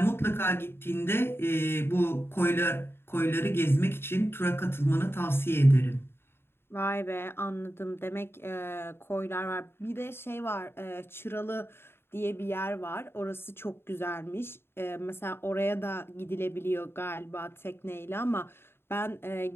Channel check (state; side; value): late; right; 0.11 ms